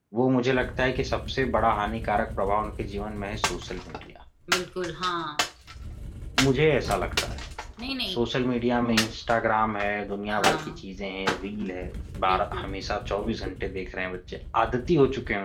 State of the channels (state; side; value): identical; both; correlation 1.00